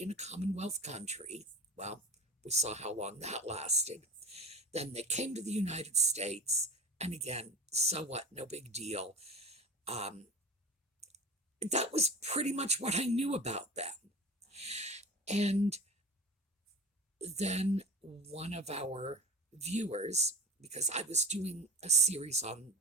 in a Commonwealth country. Well, we saw how long that lasted. Then they came to the United States. And again, so what? No big deal. That was pretty much what I knew about them. And then one of our viewers, because I was doing a series on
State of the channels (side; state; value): both; normal; correlation 0.34